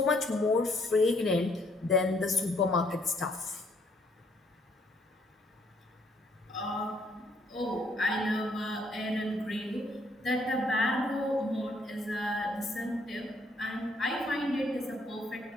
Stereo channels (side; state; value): both; normal; correlation 0.68